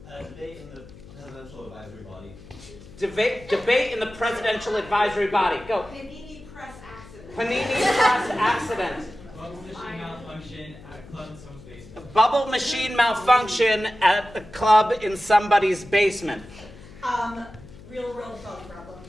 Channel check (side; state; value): left; noise; hum, 19 dB below the sound